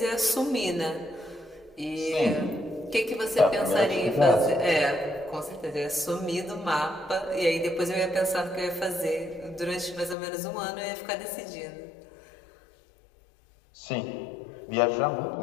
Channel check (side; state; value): right; drops out; at 10.2 s